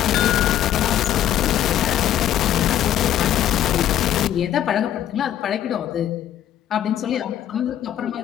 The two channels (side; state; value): right; quieter; 11.4 dB